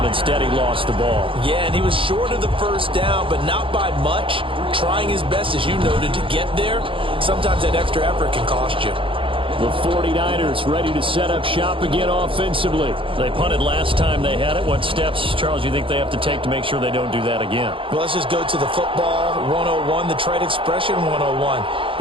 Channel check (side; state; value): left; late; 0.25 ms